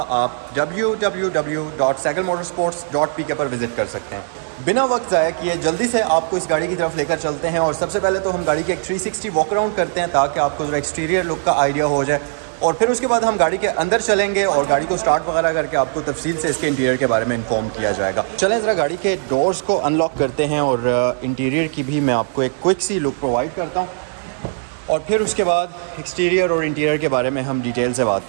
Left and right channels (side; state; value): left; silent; digital silence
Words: आप www.sagalmotorsports.pk पर विज़िट कर सकते हैं। बिना वक्त ज़ाया किए जल्दी से आपको इस गाड़ी की तरफ लेकर चलते हैं और सबसे पहले तो हम गाड़ी के एक 360 वॉक अराउंड करते हैं ताकि आपको ज़रा एक्सटीरियर लुक का आइडिया हो जाए और फिर उसके बाद हम गाड़ी के अंदर चलेंगे और गाड़ी को स्टार्ट वगैरह करके आपको तफसील से इसके इंटीरियर के बारे में इन्फॉर्म किया जाएगा। चलें ज़रा गाड़ी के डोर्स को अनलॉक करते हैं और इंटीरियर की भी मैं आपको एक क्विक सी लुक प्रोवाइड करता हूँ और फिर उसके बाद एक्सटीरियर और इंटीरियर के बारे में हम डिटेल से बात